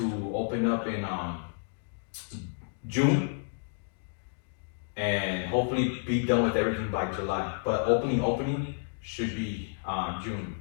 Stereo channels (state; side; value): silent; right; digital silence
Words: open up in June and hopefully be done with everything by July. But opening should be June,